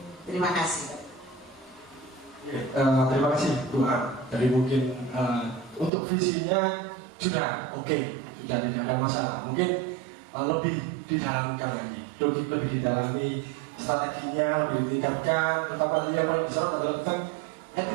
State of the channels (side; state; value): left; drops out; at 5.9 s